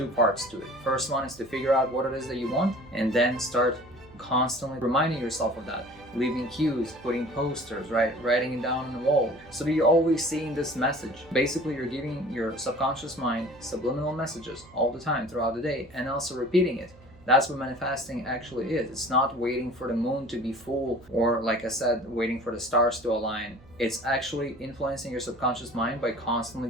parts to it. First one is to figure out what it is that you want, and then start constantly reminding yourself of that. Leaving cues, putting posters, right? Writing it down on the wall. So that you're always seeing this message. Basically, you're giving your subconscious mind subliminal messages all the time throughout the day and also repeating it. That's what manifesting actually is. It's not waiting for the moon to be full or, like I said, waiting for the stars to align. It's actually influencing your subconscious mind by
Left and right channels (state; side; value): noise; right; hum, 24 dB below the sound